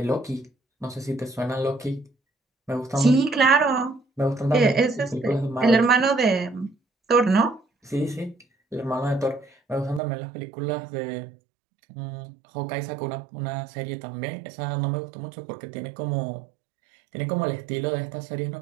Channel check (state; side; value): drops out; left; at 10.0 s